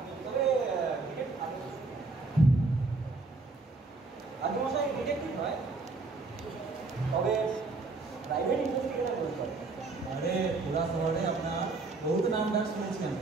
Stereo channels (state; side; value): quieter; left; 3.6 dB